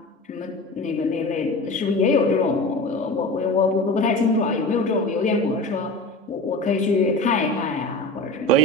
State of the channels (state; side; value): normal; both; correlation 0.32